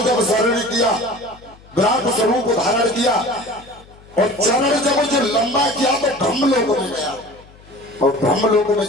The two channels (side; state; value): left; noise; hum, 24 dB below the sound